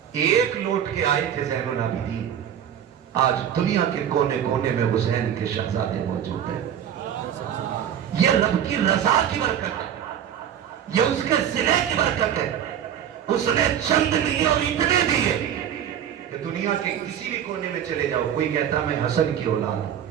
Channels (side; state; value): left; quieter; 9.5 dB